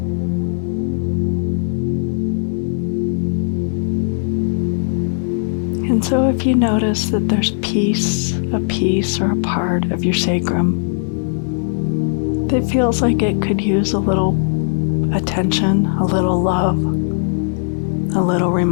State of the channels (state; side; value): silent; right; digital silence